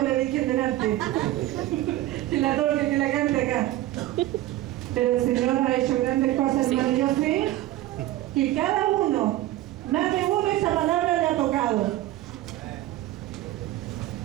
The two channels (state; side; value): quieter; left; 15.5 dB